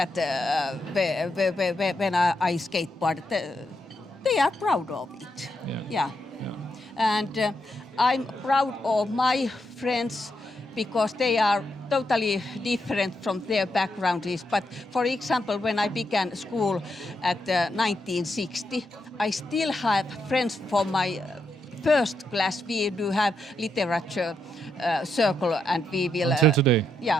when I skateboard, they are proud of it. Yeah. And I'm proud of my friends because they are totally different from their backgrounds. But for example, when I began school at 1960, I still have friends from my first class. We do have literature circle, and we will... Until today?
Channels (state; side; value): normal; both; correlation 0.82